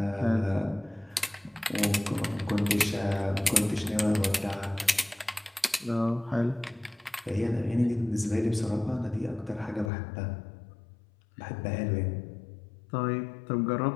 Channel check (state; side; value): drops out; right; at 9.9 s